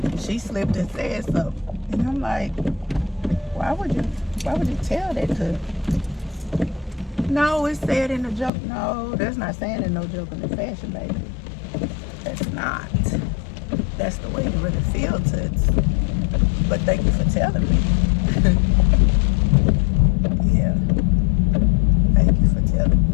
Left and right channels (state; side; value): drops out; right; at 8.5 s